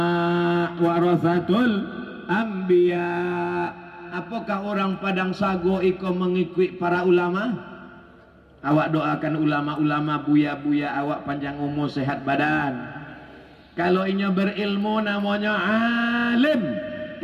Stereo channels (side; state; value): both; identical; correlation 1.00